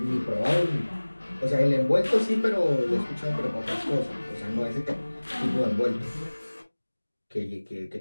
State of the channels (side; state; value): both; inverted; correlation -1.00